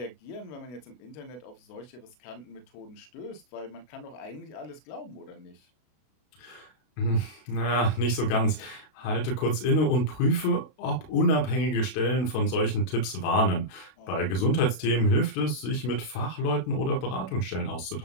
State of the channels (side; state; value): right; late; 32 ms